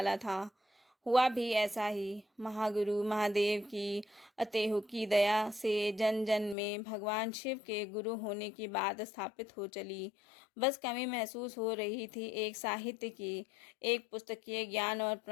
था। हुआ भी ऐसा ही। महागुरु महादेव की अतेहुकी दया से जन जन में भगवान शिव के गुरु होने की बात स्थापित हो चली। बस कमी महसूस हो रही थी एक साहित्य की, एक पुस्तकीय ज्ञान और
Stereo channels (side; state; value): right; drops out; at 6.6 s